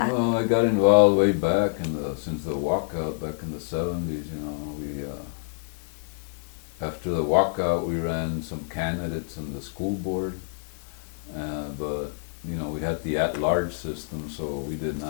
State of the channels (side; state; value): right; silent; digital silence